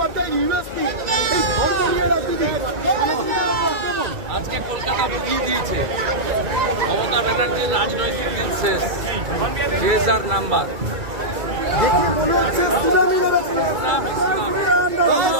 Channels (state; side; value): late; left; 2.3 ms